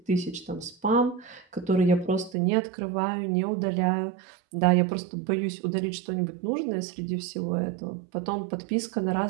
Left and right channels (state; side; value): drops out; left; at 2.4 s